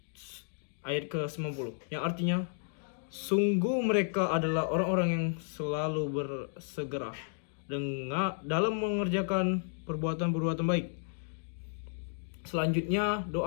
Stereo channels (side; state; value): right; silent; digital silence